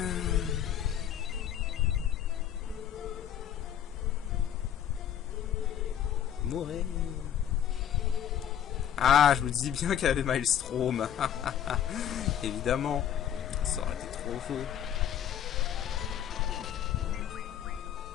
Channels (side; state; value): right; quieter; 10.0 dB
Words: Mourir. Ah, je vous dis bien qu'elle avait Maelstrom. Évidemment. Ça aurait été trop faux.